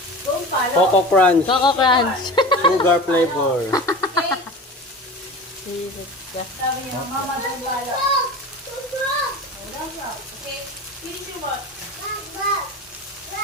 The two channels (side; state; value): both; normal; correlation 0.33